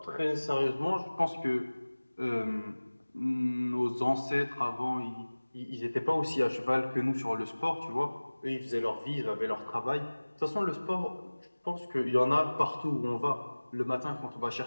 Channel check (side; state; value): both; inverted; correlation -1.00